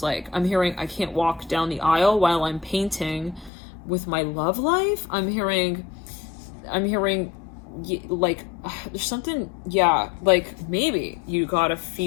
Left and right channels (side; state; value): right; drops out; at 3.5 s